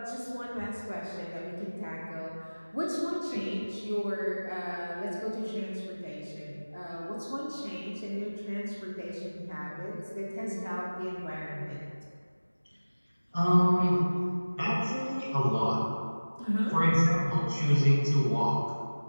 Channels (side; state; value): both; inverted; correlation -1.00